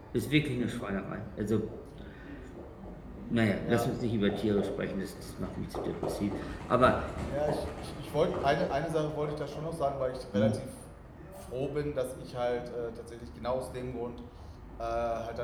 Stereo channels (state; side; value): identical; both; correlation 1.00